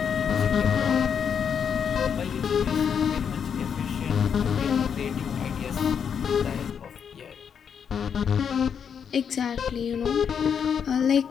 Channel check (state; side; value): quieter; right; 7.4 dB